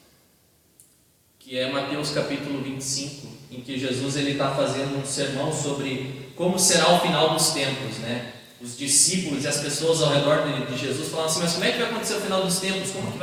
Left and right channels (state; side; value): identical; both; correlation 1.00